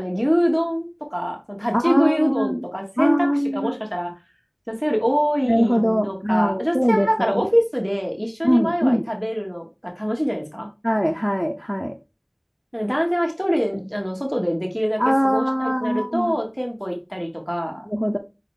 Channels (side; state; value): both; identical; correlation 1.00